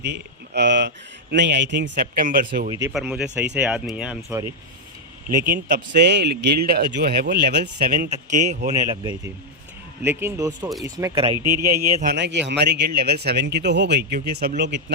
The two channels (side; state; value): both; normal; correlation -0.01